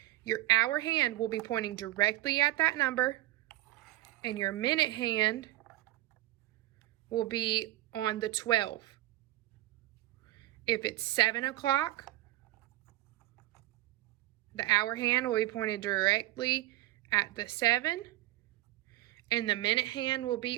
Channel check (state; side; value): quieter; left; 16.4 dB